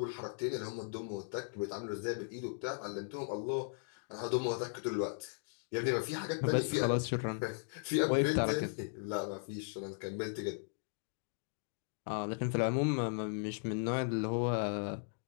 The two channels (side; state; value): right; silent; digital silence